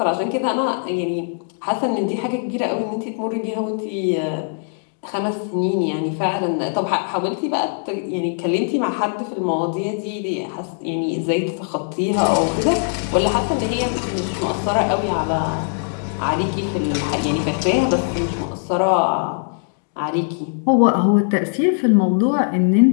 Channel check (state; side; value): silent; right; 65 dB below the other